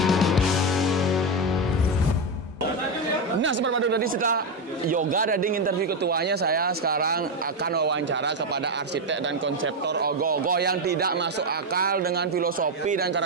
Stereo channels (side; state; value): both; normal; correlation 0.09